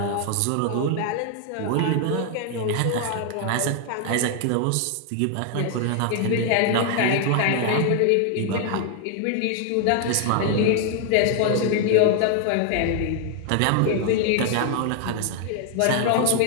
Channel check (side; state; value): both; different; correlation 0.00